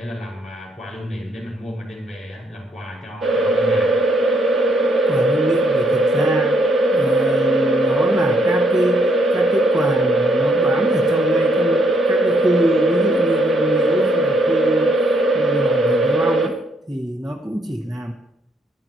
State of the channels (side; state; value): both; normal; correlation 0.71